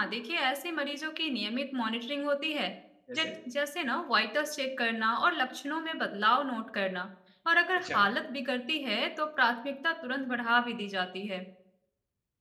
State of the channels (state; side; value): identical; both; correlation 1.00